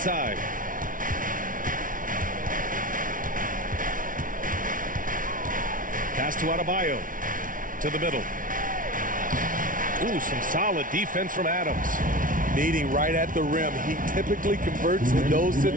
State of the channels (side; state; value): left; late; 0.39 ms